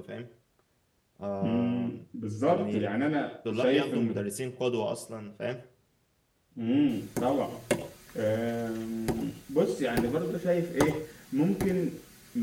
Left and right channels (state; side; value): identical; both; correlation 1.00